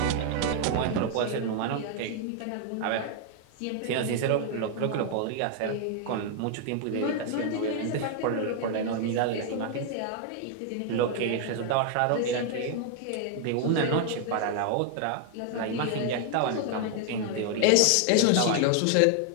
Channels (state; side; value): different; both; correlation 0.00